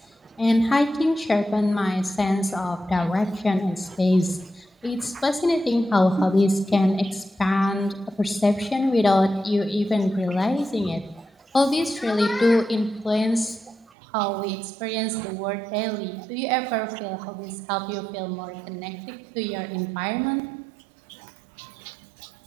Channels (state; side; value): drops out; left; at 13.9 s